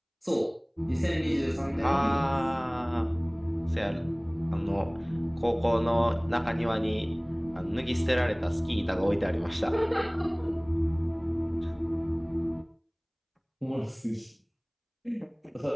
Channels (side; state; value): both; identical; correlation 1.00